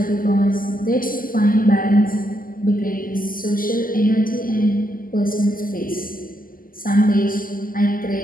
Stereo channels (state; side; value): late; right; 0.41 ms